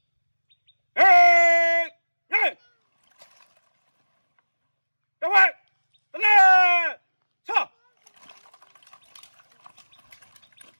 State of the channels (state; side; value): inverted; both; correlation -1.00